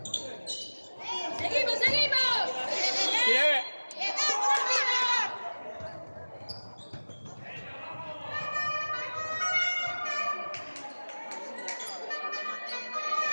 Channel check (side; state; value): both; inverted; correlation -1.00